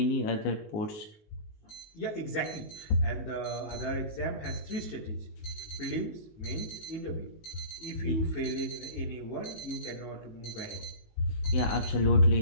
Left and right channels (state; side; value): late; right; 19 ms